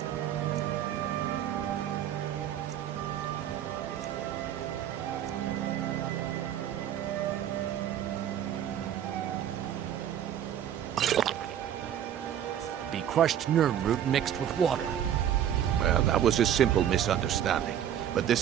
crushed nerve root mixed with water. Well, that was a simple misunderstanding. But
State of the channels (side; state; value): left; quieter; 10.2 dB